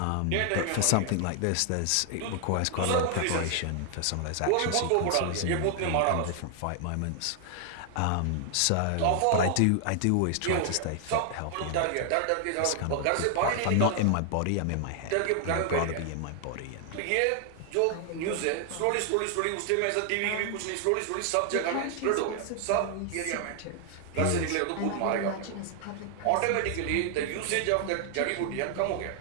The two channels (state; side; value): different; both; correlation 0.00